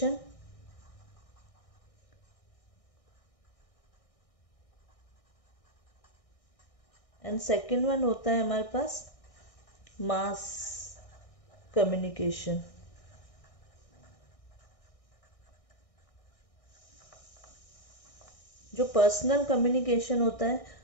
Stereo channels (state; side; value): late; right; 1.6 ms